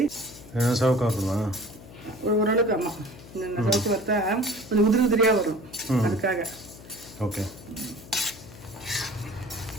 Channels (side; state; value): left; noise; hum, 18 dB below the sound